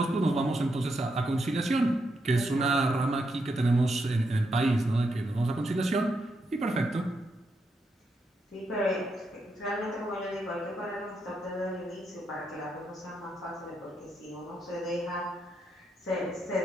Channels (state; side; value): normal; both; correlation 0.81